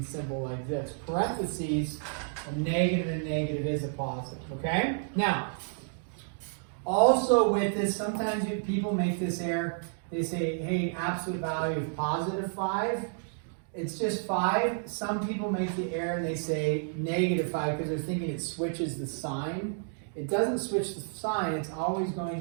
symbol like this. Parentheses, a negative and negative is a positive. Okay? Now, also with this, sometimes people make this error. They say, hey, absolute value of +5. It's just 5. Some people make the error and they say -5 because they're thinking it switches the sign. It doesn't switch the sign. It's always going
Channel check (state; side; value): silent; left; digital silence